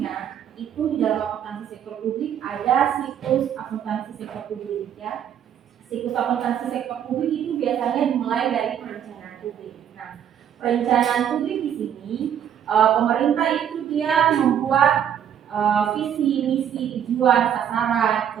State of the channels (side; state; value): left; quieter; 9.3 dB